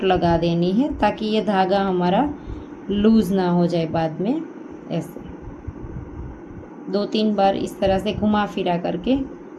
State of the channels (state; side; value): identical; both; correlation 1.00